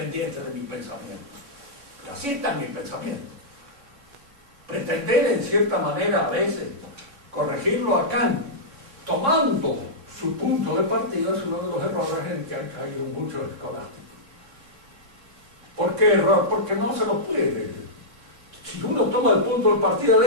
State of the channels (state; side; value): late; left; 3.6 ms